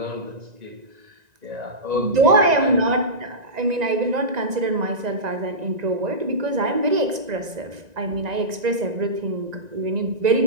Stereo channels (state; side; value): late; left; 1.9 ms